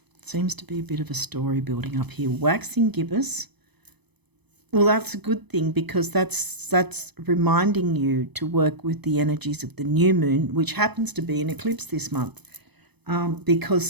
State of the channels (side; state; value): left; late; 0.99 ms